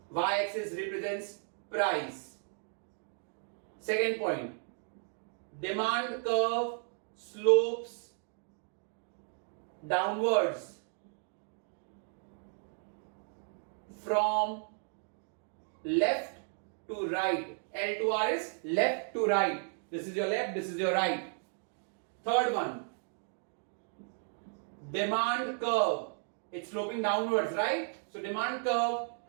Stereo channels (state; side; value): silent; left; 55 dB below the other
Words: y-axis represents price. Second point, demand curve slopes downwards from left to right. L to R is left to right. This is your left, this is your right. Third one, demand curve. It's sloping downwards, right? So demand curve